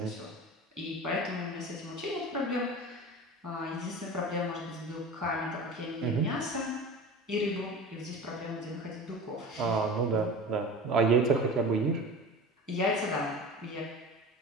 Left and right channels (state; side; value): normal; both; correlation 0.34